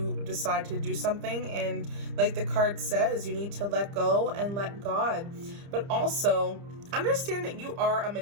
decide to do something. And like the card says, you need to let go and let God. But also understand that you are a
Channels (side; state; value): left; late; 30 ms